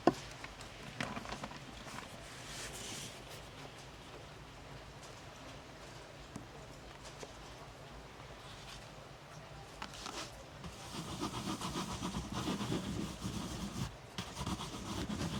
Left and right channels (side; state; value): both; identical; correlation 1.00